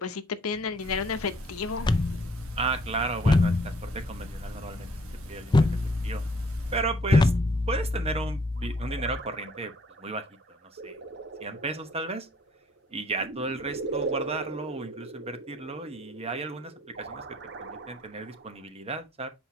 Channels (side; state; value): both; normal; correlation 0.62